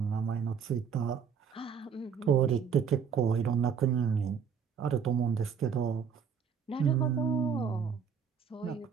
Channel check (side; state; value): left; quieter; 7.0 dB